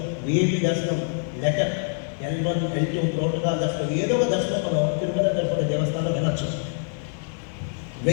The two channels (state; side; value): silent; right; 62 dB below the other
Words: VIP దర్శనం, లెటర్, L1, L2 ప్రోటోకాల్ దర్శనం, ఏదో ఒక దర్శనం మనం తిరుమల తిరుపతి